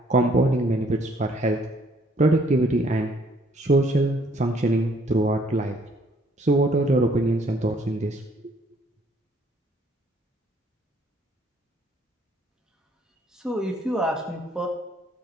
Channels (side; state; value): both; normal; correlation 0.63